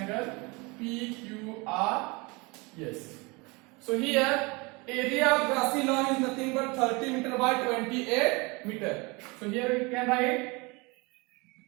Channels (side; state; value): left; quieter; 26.9 dB